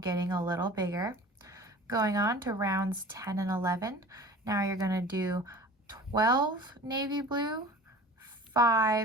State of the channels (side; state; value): both; normal; correlation 0.41